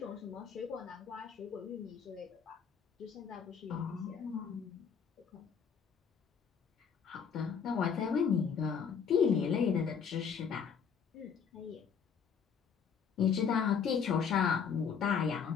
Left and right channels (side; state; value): right; quieter; 6.8 dB